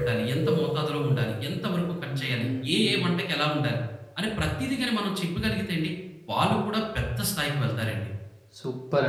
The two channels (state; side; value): identical; both; correlation 1.00